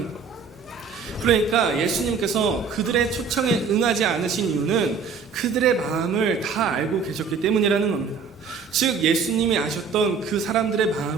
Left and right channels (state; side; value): quieter; left; 5.6 dB